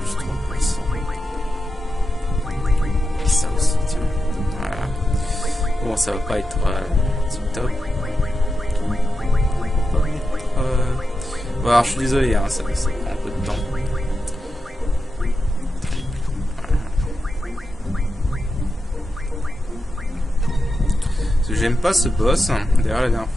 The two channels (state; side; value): normal; both; correlation 0.89